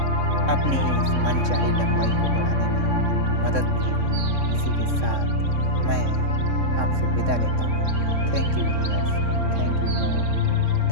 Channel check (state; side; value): late; left; 3.6 ms